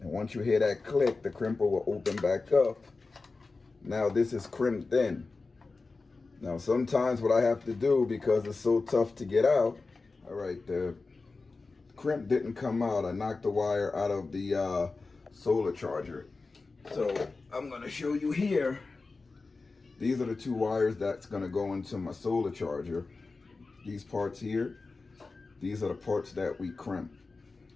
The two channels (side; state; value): right; quieter; 3.9 dB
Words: And once you hear that click, the crimper will open back up. Now this is crimped in. Now sometimes what I have to do, because it's so tough to get out, all right, the crimp didn't come out. I knocked the wire out of the solar charger. So I'm gonna show you here. These are the two wires that's gonna go into my solar charger. These parts here, these are the parts that we crimp.